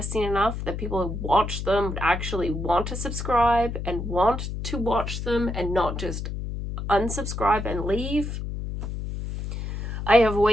enough that people who watch them would actually want to subscribe and want to watch them and not just unsubscribe and leave. I have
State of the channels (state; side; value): noise; left; hum, 5 dB below the sound